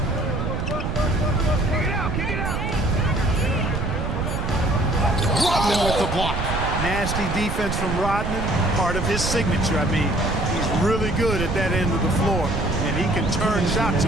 Rodman with the block. Nasty defense from Rodman, part of his signature. I mean, he's really good at that end of the floor, and he can turn shots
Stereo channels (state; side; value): noise; right; rumble, 2 dB below the sound